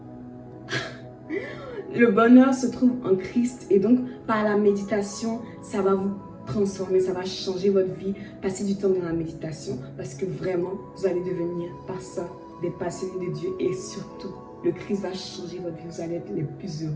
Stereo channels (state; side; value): identical; both; correlation 1.00